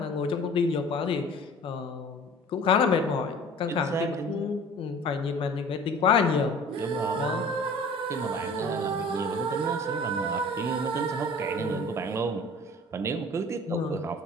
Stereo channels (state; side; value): normal; both; correlation 0.45